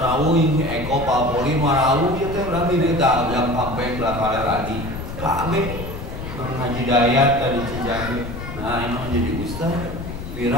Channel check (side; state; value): left; noise; rumble, 8 dB below the sound